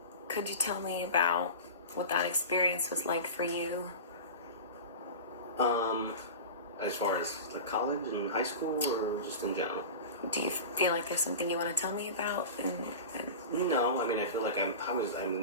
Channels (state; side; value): inverted; both; correlation -0.30